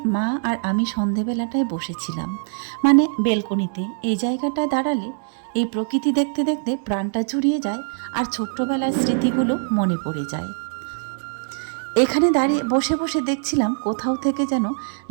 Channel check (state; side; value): silent; left; digital silence